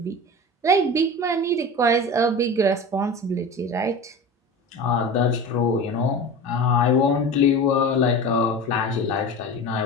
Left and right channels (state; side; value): normal; both; correlation 0.31